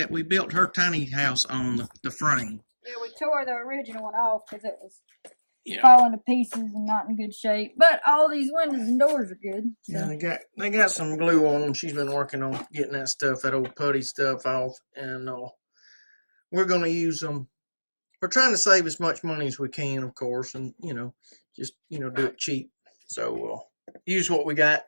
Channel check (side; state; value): both; inverted; correlation -1.00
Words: we built her tiny house on, the frame. Yeah, we tore the original one off because it was falling to pieces and not in good shape. But all these windows and doors are good. So. Yeah, they got some glue on them. She's been working on getting that old putty stuff off, and we're gonna use them. We're trying to save as much money as we can, of course, and just do it cheap. So use what we got,